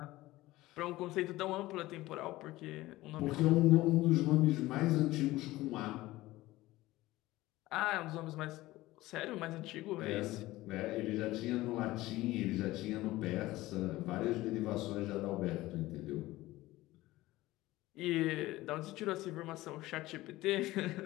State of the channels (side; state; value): right; quieter; 17.8 dB